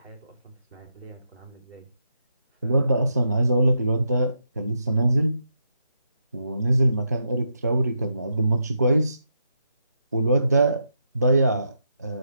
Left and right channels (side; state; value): both; inverted; correlation -0.81